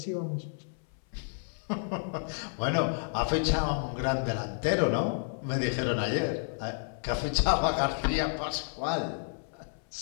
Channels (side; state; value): right; silent; 57 dB below the other